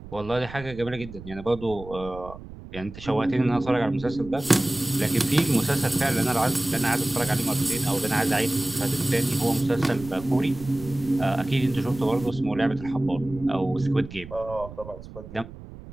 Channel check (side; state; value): right; noise; rumble, 15 dB below the sound